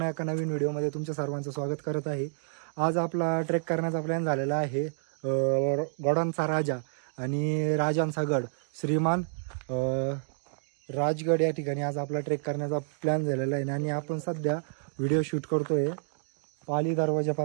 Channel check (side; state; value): left; silent; digital silence